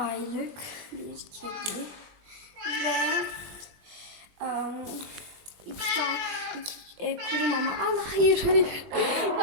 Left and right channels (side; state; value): left; late; 21 ms